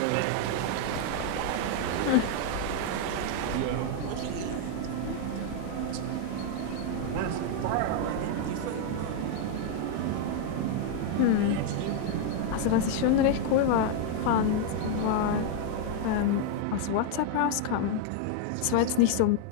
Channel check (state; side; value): different; both; correlation 0.00